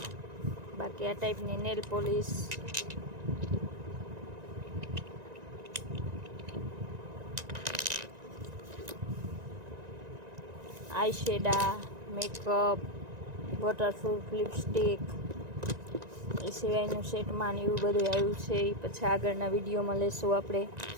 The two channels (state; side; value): late; left; 1.9 ms